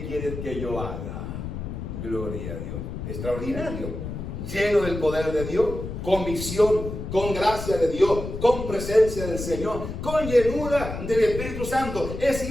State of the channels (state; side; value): noise; left; rumble, 7 dB below the sound